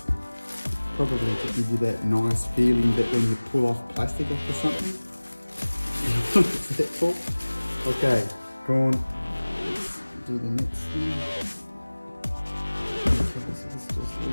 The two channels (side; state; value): both; inverted; correlation -1.00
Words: Probably to give you that nice feeling that when you pull off plastic off of something. What's that for? Okay, go on. Let's do the next thing. Okay, so this just